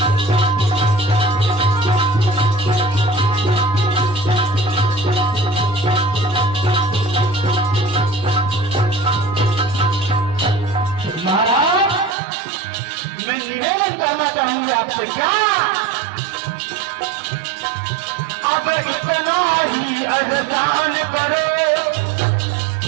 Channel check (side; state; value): left; drops out; at 12.2 s